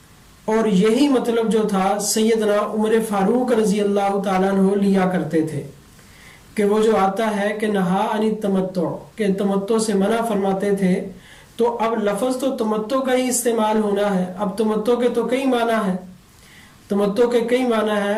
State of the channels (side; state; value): both; identical; correlation 1.00